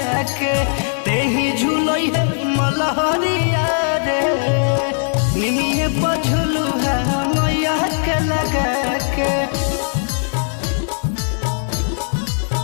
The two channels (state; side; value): silent; right; 67 dB below the other